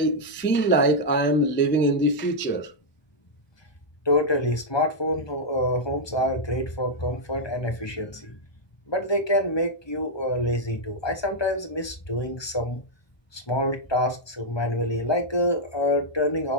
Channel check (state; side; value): late; right; 1.2 ms